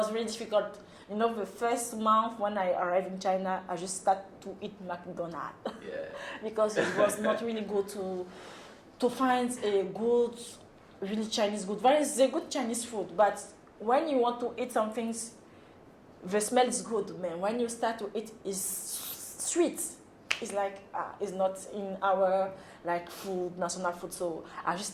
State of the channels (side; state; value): both; identical; correlation 1.00